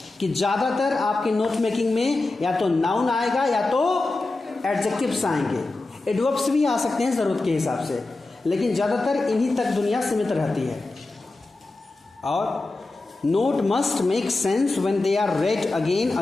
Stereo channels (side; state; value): right; quieter; 3.2 dB